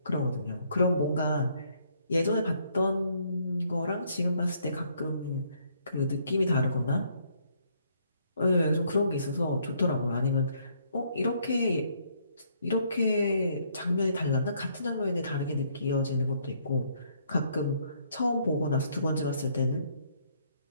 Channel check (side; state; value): both; inverted; correlation -0.68